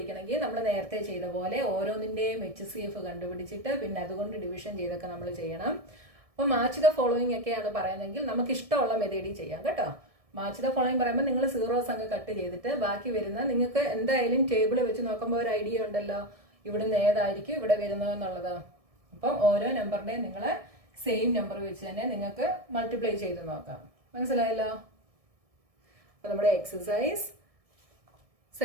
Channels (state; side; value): late; left; 1.7 ms